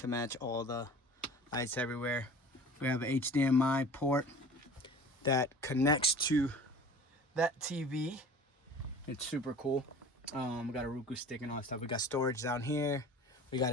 match all the lights everywhere. We have an HDMI port that connects to that TV. It's super cool. We got a Roku stick and all that stuff. We got storage down here. We got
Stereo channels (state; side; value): normal; both; correlation 0.42